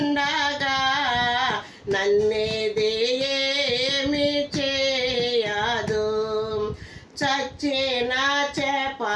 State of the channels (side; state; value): both; identical; correlation 1.00